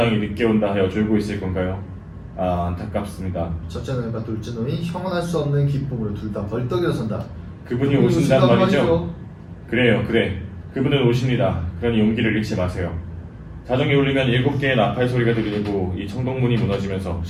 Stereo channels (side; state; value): both; identical; correlation 1.00